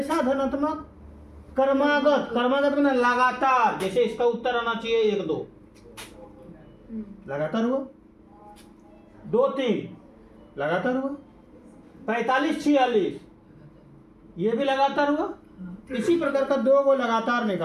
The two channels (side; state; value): both; identical; correlation 1.00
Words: धनात्मक? क्रमागत। क्रमागत में लगातार, जैसे इसका उत्तर आना चाहिए 1 2 लगातार हुआ, 2 3 लगातार हुआ, 45 46 ये भी लगातार हुआ। इसी प्रकार का दो को लगातार